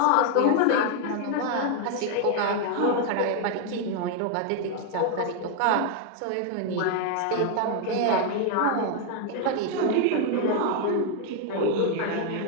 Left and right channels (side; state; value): both; different; correlation 0.00